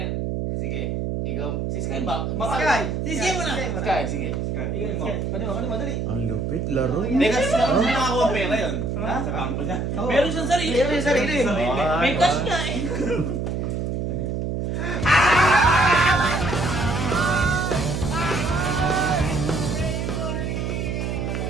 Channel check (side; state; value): right; noise; hum, 2 dB below the sound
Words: Sige. Ikaw, si Sky ba? Sisiya mo na. Sky, sige. Madali. Ang lupit, laro. Teka, saan nakakuha ang pera yun? Ha? Sa bangko niya. Meron siyang sarili. May cash ka eh.